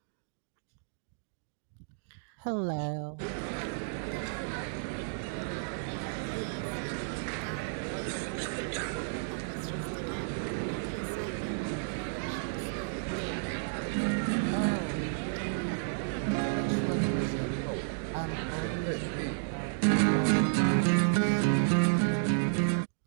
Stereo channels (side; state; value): left; silent; digital silence